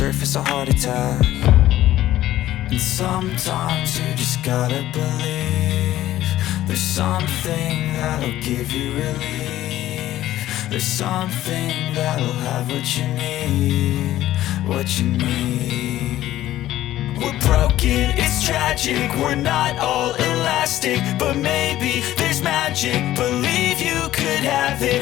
a heart attack. And sometimes you just gotta believe there's something that'll give you relief. There's something that'll have what you need. What you need. We're broken, it's tragic. We're not all elastic, but maybe there's magic. Believe you could have it.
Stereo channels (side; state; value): right; quieter; 14.1 dB